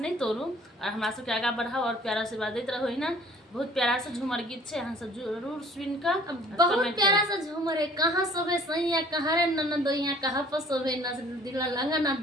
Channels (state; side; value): normal; both; correlation 0.53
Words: तोड़ू और हमरा सबके आगा बढ़ाओ और प्यारा आशीर्वाद देते रहो ही ना। बहुत प्यारा सा झूमर गीत छे, अहाँ सब जरूर सुन कर बहुत प्यारा सा झूमर है। कहाँ सोबे सैया कहाँ रे ननदोइया, कहाँ पर सोबे न दिला लंगा ना